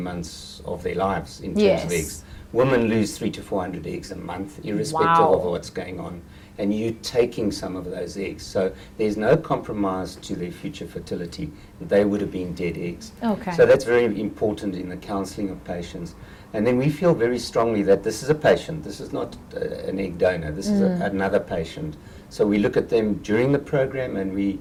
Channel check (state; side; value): identical; both; correlation 1.00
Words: months of their lives in terms of eggs. Women lose 300 to 400 eggs a month, irrespective of what's going on. And you're taking some of those eggs. So there's no compromise to their future fertility. They would have been dead eggs. Okay. So that's very important in the counseling of patients. And then we feel very strongly that this is a patient. This is not an egg donor. This is another patient. So we look at them during the program, and